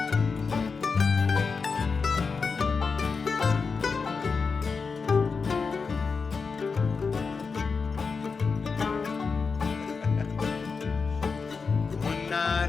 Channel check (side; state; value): right; quieter; 5.0 dB